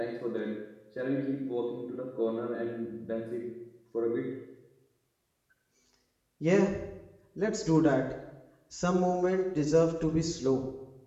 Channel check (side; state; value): both; identical; correlation 1.00